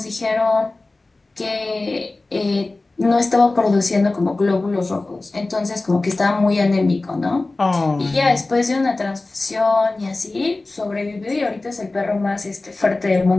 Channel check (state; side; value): quieter; right; 3.2 dB